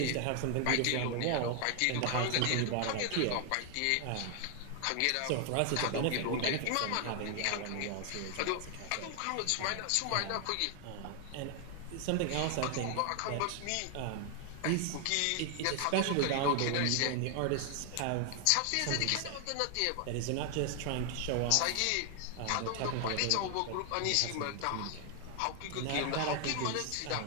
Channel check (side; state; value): both; different; correlation 0.00